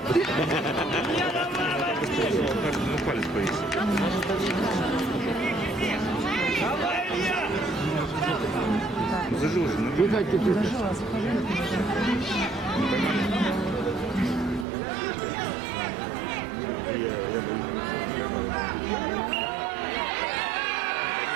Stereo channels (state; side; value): drops out; left; at 14.7 s